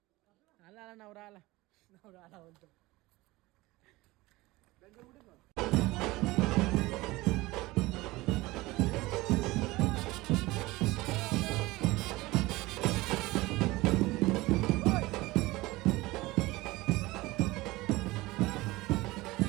आला आला नवरा आला. नवरा आला म्हणतो.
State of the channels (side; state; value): left; quieter; 20.2 dB